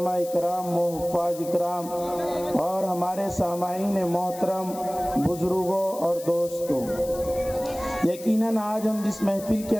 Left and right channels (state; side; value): noise; left; hiss, 16 dB below the sound